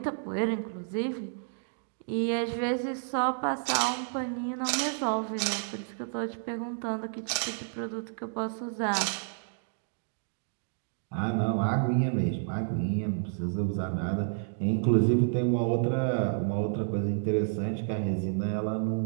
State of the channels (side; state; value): left; silent; digital silence